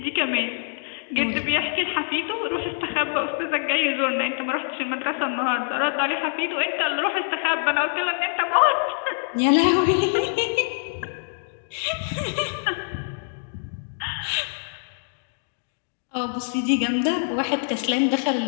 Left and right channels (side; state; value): right; silent; digital silence